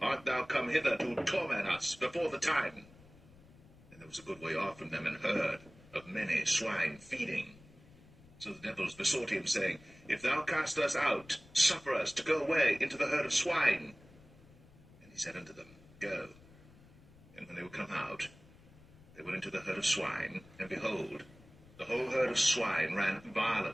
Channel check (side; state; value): left; noise; rumble, 23 dB below the sound